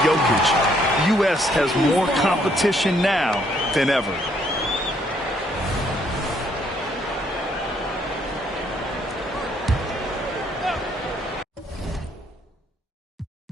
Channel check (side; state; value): both; normal; correlation 0.68